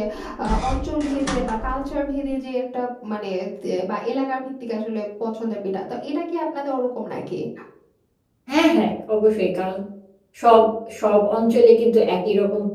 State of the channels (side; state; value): both; identical; correlation 1.00